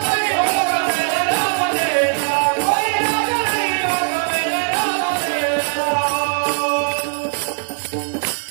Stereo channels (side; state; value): left; silent; 63 dB below the other